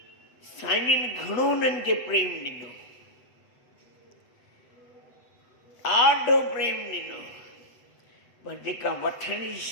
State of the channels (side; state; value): right; late; 8.0 ms